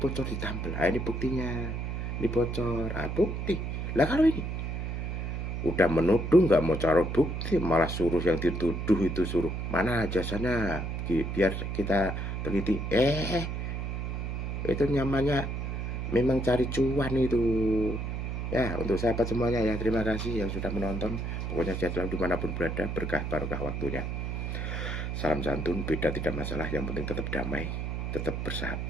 ditampil, ini buktinya, ini bocor, bukti. Lah kalau ini udah menuduh, nggak mau cari bukti, malah suruh yang dituduh itu suruh mana jasanya biar kita teliti. Itu namanya memang cari cuan itu. Ya, untuk sahabat semuanya ya, terima kasih yang sudah menonton. Pokoknya sehat selalu dimanapun berada, berkah barokah waktunya. Salam santun, beda tidak masalah, yang penting tetap damai, tetap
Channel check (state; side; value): noise; right; hum, 3 dB below the sound